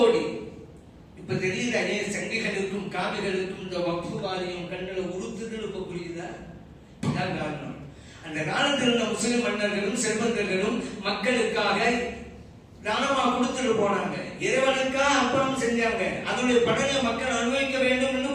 இப்ப தெரியுதா ஏன் சங்கிகளுக்கும் காவிகளுக்கும் இந்த வக்ஃபு வாரியம் கண்களை உறுத்துதல் இப்ப புரியுதா? காரணம், அந்த காலத்தில் இருந்த முஸ்லிம் மன்னர்களும் செல்வந்தர்களும் மக்களுக்காக தானமா கொடுத்துட்டு போனாங்க, இறைவனுக்காக அர்ப்பணம் செஞ்சாங்க, அதனுடைய பலனை மக்கள் அனுபவிக்க வேண்டும் என்று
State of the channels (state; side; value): identical; both; correlation 1.00